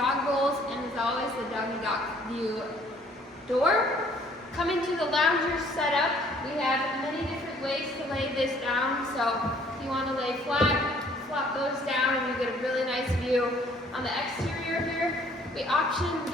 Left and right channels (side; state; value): both; normal; correlation 0.59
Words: bowls, and as always, the Doggy Dock view door. Coming to the lounger setup, we have many different ways to lay this down. So if you want to lay flat, flop those down and you get a really nice view. On the exterior here, we option